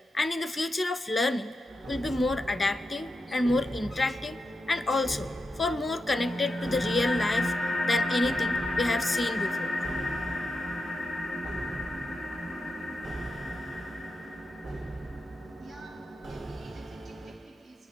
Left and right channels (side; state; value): both; normal; correlation 0.88